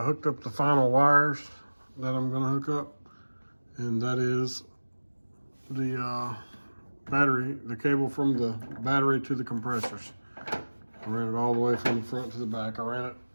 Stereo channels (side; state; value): both; inverted; correlation -1.00